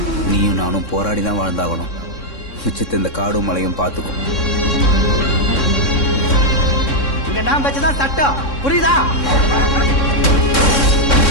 நீயும் நானும் போராடி தான் வாழ்ந்தாகணும். மிச்சத்தை இந்த காடும் மலையும் பார்த்துக்கும். இங்க நான் வச்சுதான் சட்டம், புரியுதா?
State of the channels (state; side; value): late; right; 3.6 ms